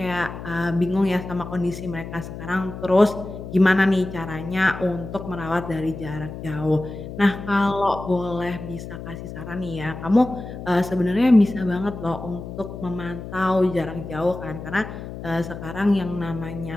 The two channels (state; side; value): noise; left; hum, 10 dB below the sound